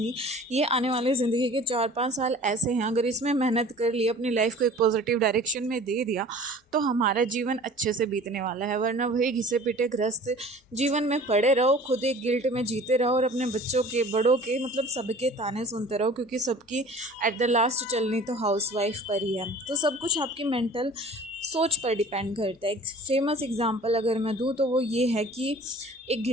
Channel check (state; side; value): normal; both; correlation 0.45